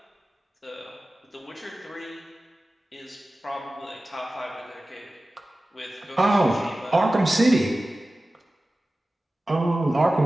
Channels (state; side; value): normal; both; correlation 0.96